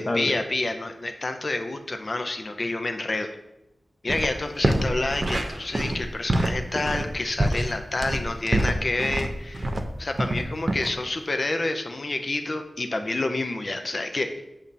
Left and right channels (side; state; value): both; normal; correlation 0.95